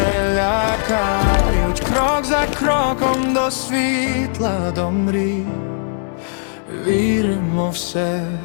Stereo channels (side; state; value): right; silent; digital silence